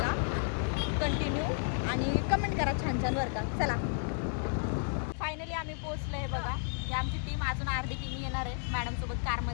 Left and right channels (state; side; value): silent; right; digital silence